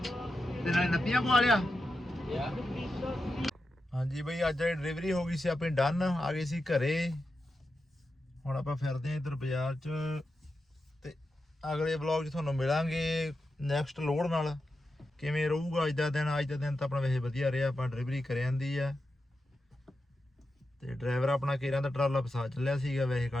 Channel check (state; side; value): normal; both; correlation 0.89